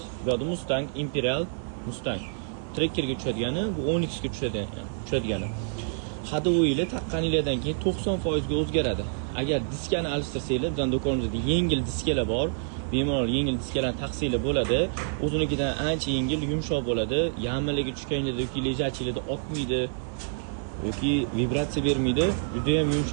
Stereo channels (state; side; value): silent; left; 60 dB below the other